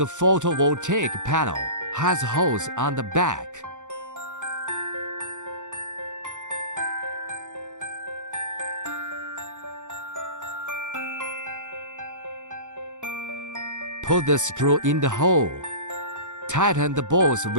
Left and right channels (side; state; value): left; late; 0.85 ms